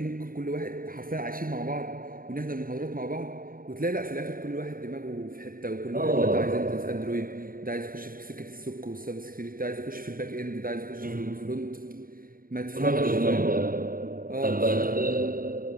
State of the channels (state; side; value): late; left; 0.41 ms